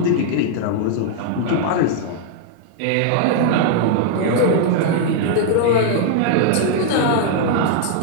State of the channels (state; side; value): different; both; correlation -0.01